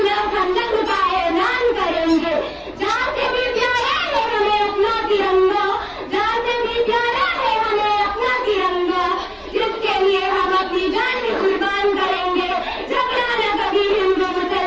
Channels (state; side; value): identical; both; correlation 1.00